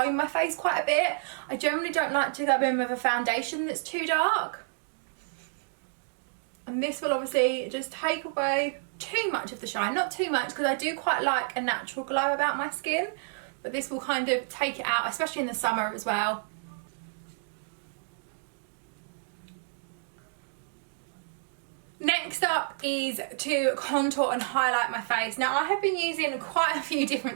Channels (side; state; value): left; silent; digital silence